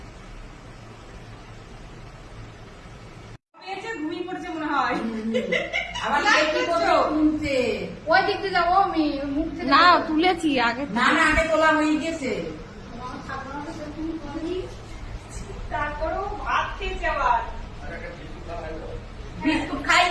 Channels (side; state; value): both; identical; correlation 1.00